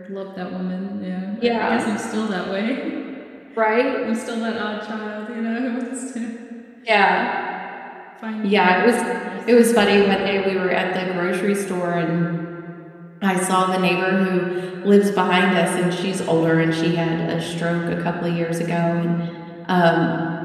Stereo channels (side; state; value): both; identical; correlation 1.00